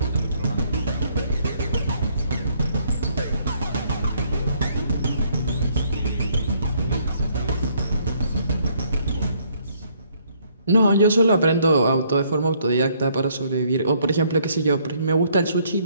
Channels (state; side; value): inverted; both; correlation -0.67